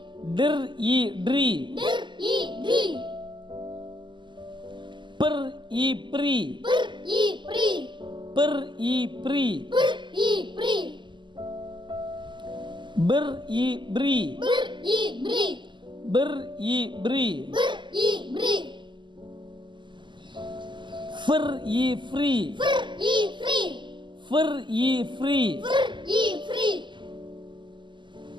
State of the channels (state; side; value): late; left; 0.23 ms